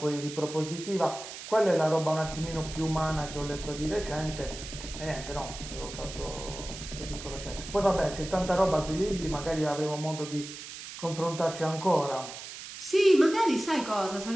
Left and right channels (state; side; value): noise; right; hiss, 11 dB below the sound